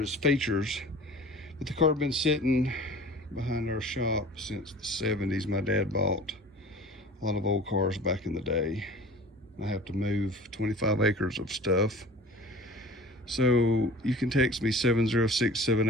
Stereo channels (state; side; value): normal; both; correlation 0.42